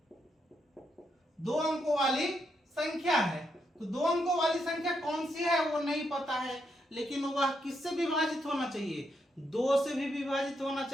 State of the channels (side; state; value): both; normal; correlation 0.80